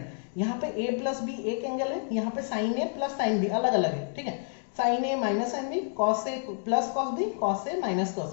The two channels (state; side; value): silent; right; digital silence